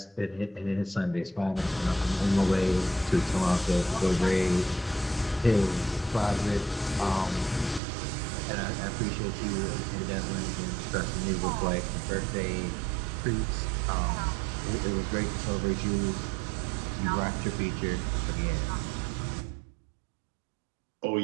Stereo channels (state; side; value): drops out; left; at 7.8 s